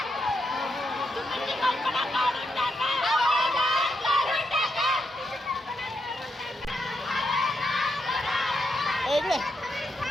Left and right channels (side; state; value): both; normal; correlation 0.82